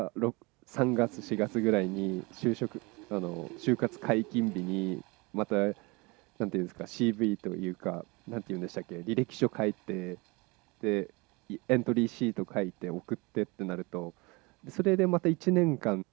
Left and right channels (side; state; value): left; quieter; 26.2 dB